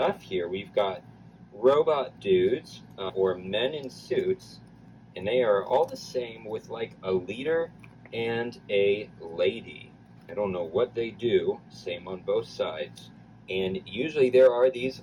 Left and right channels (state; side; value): identical; both; correlation 1.00